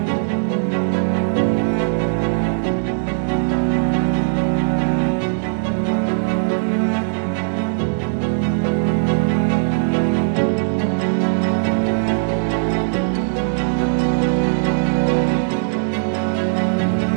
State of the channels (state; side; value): silent; left; 66 dB below the other